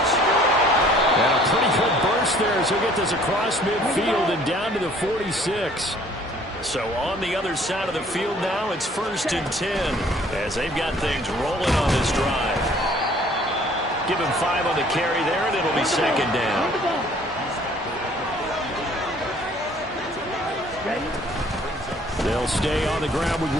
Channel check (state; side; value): normal; both; correlation 0.56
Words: And a pretty good burst there as he'll get this across midfield and down to the 46. So on the other side of the field now, it's 1st and 10 as they've got things rolling on this drive. Give him 5 on the carry there, and it'll be 2nd down. They'll stay on the ground with